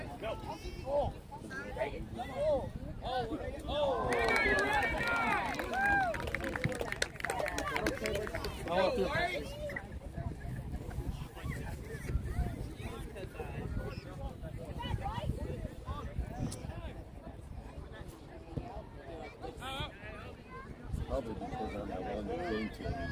Probably because on that one that came to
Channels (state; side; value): identical; both; correlation 1.00